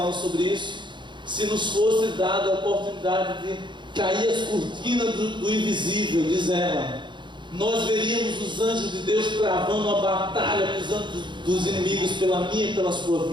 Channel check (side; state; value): left; late; 0.23 ms